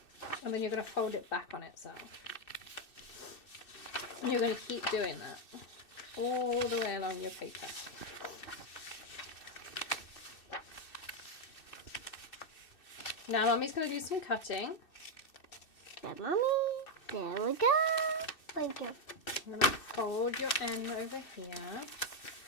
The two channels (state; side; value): late; right; 2.6 ms